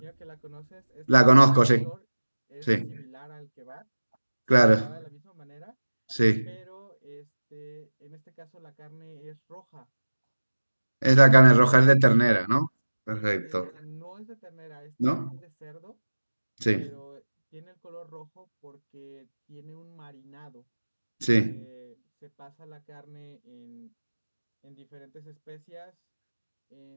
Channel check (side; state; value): both; inverted; correlation -1.00